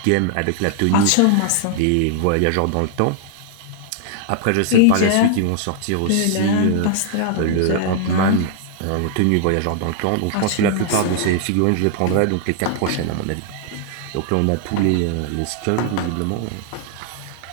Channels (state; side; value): different; both; correlation 0.00